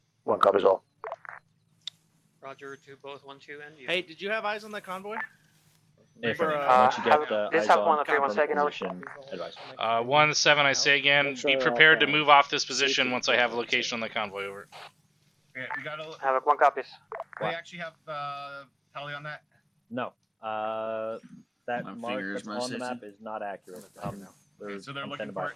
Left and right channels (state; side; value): identical; both; correlation 1.00